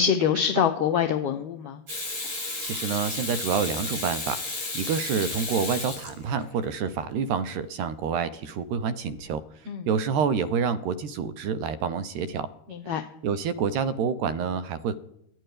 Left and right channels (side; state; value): left; late; 13 ms